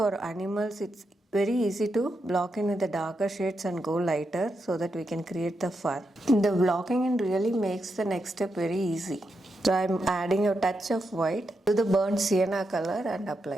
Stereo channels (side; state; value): both; normal; correlation 0.84